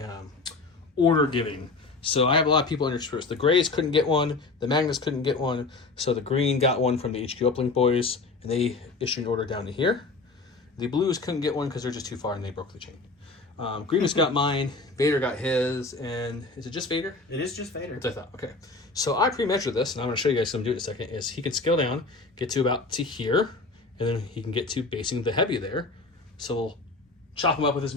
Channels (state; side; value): quieter; right; 3.7 dB